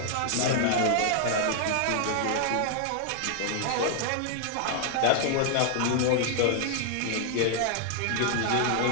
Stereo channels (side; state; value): both; different; correlation 0.00